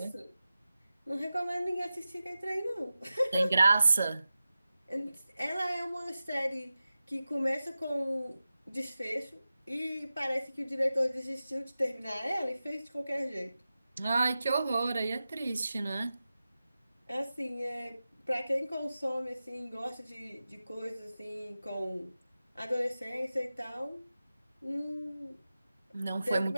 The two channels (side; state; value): both; inverted; correlation -0.94